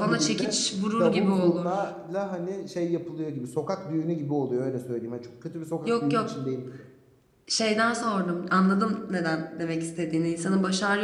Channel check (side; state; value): both; identical; correlation 1.00